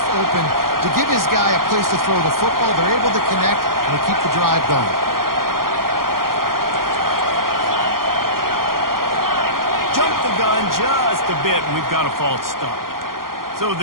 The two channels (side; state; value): left; late; 0.92 ms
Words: open to give his guy a place to throw the football. They're able to connect, and they keep the drive going. Jump the gun just a bit, and we've got a false start. So